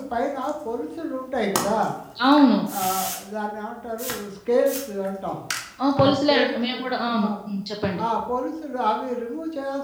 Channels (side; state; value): both; identical; correlation 1.00